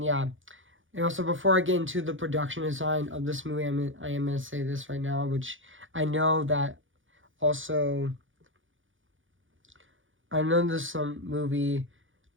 And also, before I get into the production design of this movie, I am going to say this right now, which I know that also, I know this movie,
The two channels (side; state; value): left; late; 0.57 ms